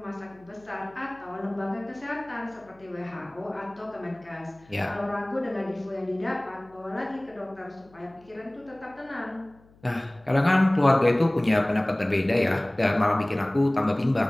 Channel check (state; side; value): noise; left; hum, 29 dB below the sound